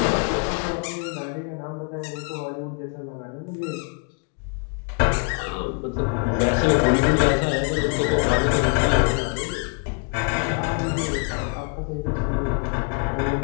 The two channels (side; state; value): right; quieter; 38.7 dB